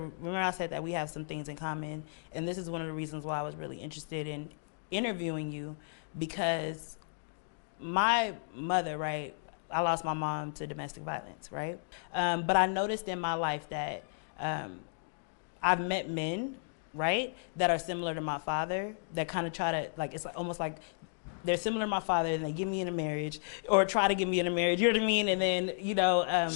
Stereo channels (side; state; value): right; silent; digital silence